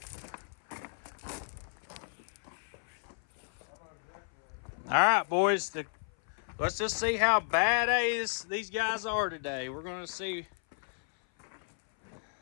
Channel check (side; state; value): right; silent; 56 dB below the other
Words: All right, boys. Let's just see how badass these guys are today. We're gonna see.